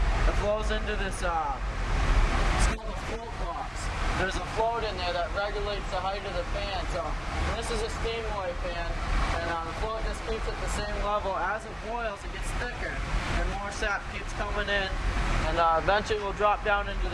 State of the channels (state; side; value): identical; both; correlation 1.00